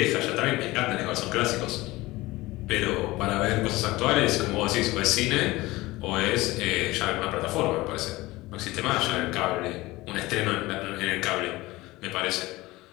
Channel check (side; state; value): right; quieter; 19.7 dB